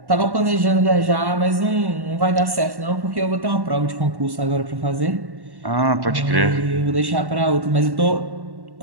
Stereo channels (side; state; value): left; late; 1.1 ms